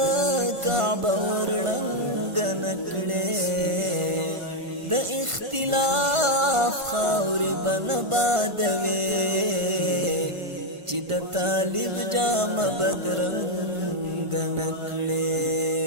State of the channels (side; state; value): left; late; 1.5 ms